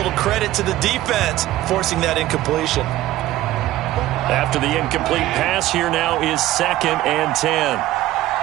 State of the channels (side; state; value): left; quieter; 15.3 dB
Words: credit to the defense forcing that incompletion? After the incomplete pass, here now is 2nd and 10.